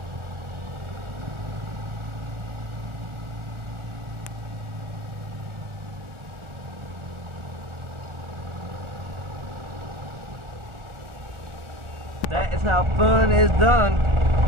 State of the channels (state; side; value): late; left; 1.4 ms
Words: That is how fun is done